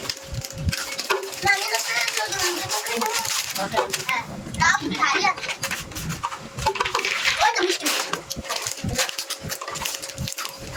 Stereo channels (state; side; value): identical; both; correlation 1.00